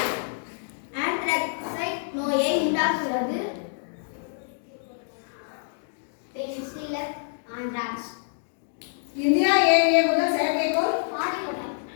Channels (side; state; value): right; silent; digital silence